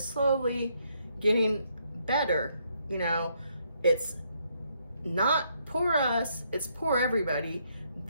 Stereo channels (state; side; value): inverted; both; correlation -0.73